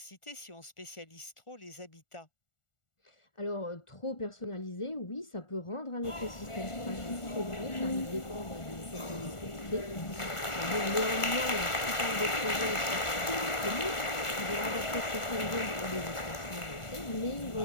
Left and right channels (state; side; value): late; right; 1.4 ms